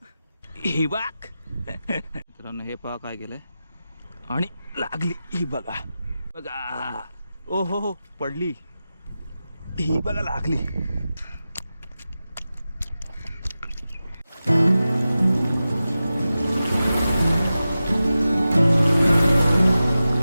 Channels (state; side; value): inverted; both; correlation -0.93